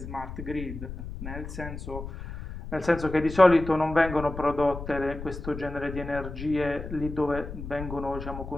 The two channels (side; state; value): left; noise; rumble, 9 dB below the sound